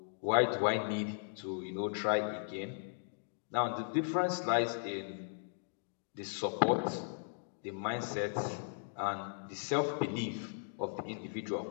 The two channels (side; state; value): right; silent; digital silence